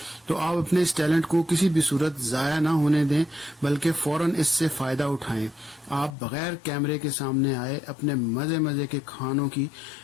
تو آپ اپنے اس ٹیلنٹ کو کسی بھی صورت ضائع نہ ہونے دیں بلکہ فوراً اس سے فائدہ اٹھائیں۔ آپ بغیر کیمرے کے سامنے آئے اپنے مزے مزے کے کھانوں کی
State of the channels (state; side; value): drops out; right; at 6.1 s